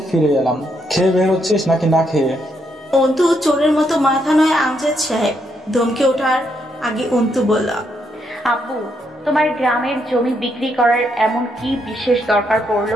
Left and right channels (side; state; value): both; normal; correlation 0.77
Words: ফিরে এলাম। খেয়ে বের হচ্ছিস নাকি না খেয়ে? অন্তু চোরের মতো মাথা নয় আমজাদ সাহেব। ধমকে ওঠার আগে অন্তু বলল, আব্বু, তোমার গ্রামের জমি বিক্রি করার এমন কি বিশেষ দরকার